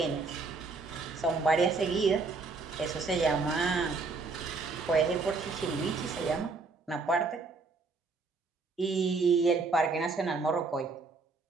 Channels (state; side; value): quieter; left; 4.1 dB